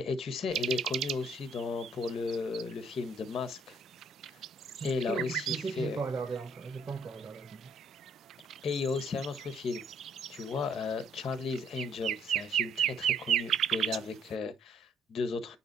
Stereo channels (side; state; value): both; normal; correlation 0.65